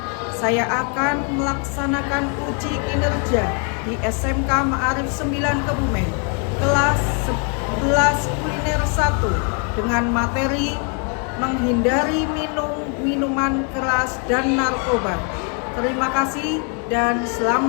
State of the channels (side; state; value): right; quieter; 39.1 dB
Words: Saya akan melaksanakan uji kinerja di SMK Ma'arif 9 Kebumen kelas 11 kuliner 1 dengan materi menghindari minuman keras dan narkoba. Terima kasih dan